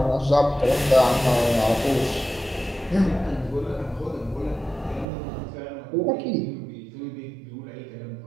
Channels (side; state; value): left; drops out; at 5.1 s